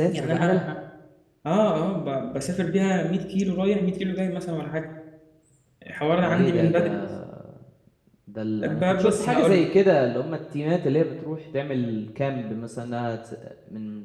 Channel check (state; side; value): identical; both; correlation 1.00